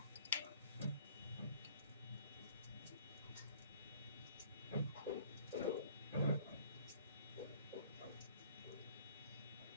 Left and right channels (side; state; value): both; inverted; correlation -0.55